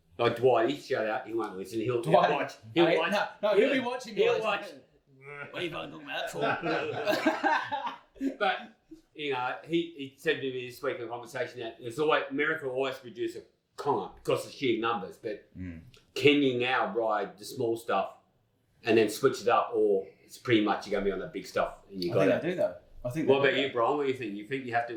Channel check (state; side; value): identical; both; correlation 1.00